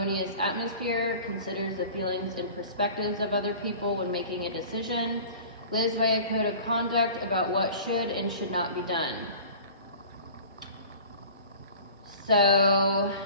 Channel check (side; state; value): both; inverted; correlation -0.43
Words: atmosphere, considers the feelings and perspectives of other people when making a decision, lives by a code of conduct about what should and should not be done. So,